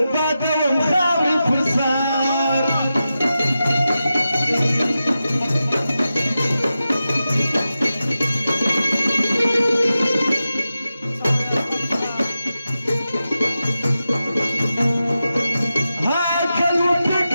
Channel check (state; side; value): inverted; both; correlation -0.91